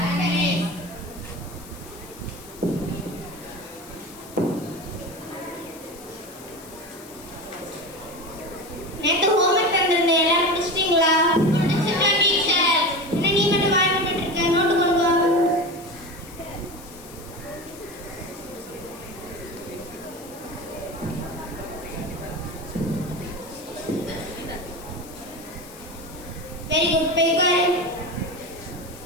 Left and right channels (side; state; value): left; noise; hiss, 19 dB below the sound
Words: நேத்து homework தந்திருந்தேன் எல்லாரும் முடிச்சிட்டீங்களா? முடிச்சிட்டேன் டீச்சர். என்ன நீ மட்டும் வாய் மூடிட்டு இருக்க? நோட்டு கொண்டு வா. Very good. போய் உட்காரு.